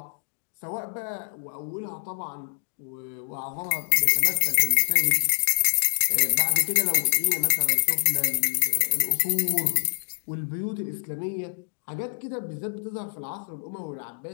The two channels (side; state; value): right; silent; digital silence